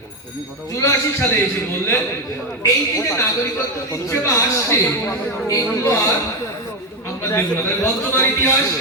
84 সালে এসে বললেন এই যে নাগরিকত্ব দিচ্ছে বা আসছে, এইগুলো আর আমরা দেখব না। বর্তমান ইতিহাস,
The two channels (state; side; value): normal; both; correlation 0.10